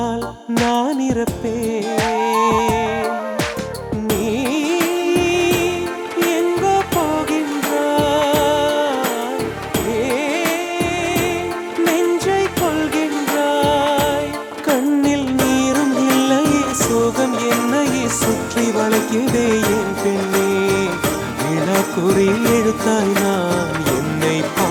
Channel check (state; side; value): identical; both; correlation 1.00